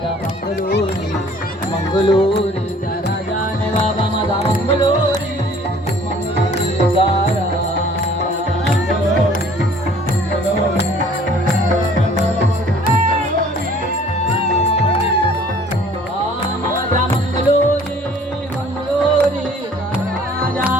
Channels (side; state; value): both; normal; correlation 0.54